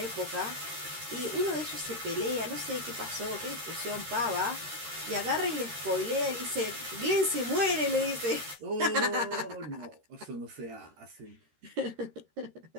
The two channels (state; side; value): late; left; 13 ms